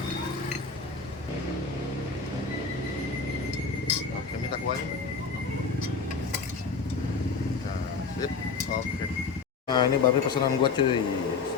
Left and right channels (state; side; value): quieter; right; 4.9 dB